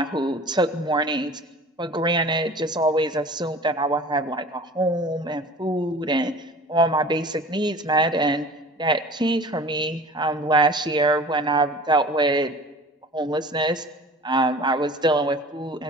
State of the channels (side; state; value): both; normal; correlation 0.42